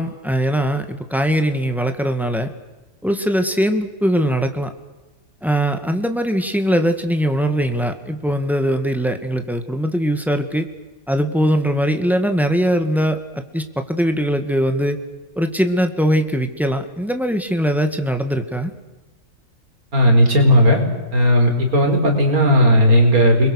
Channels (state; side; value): normal; both; correlation 0.16